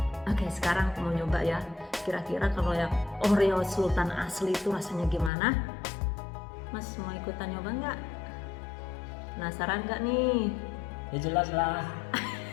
Oke, sekarang aku mau nyoba ya. Kira-kira kalau yang Oreo Sultan asli itu rasanya gimana? Mas mau ikutan nyoba nggak? Penasaran nggak nih? Ya jelas lah.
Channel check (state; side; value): drops out; right; at 5.3 s